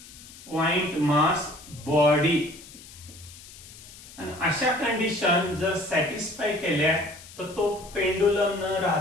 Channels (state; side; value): noise; left; hiss, 18 dB below the sound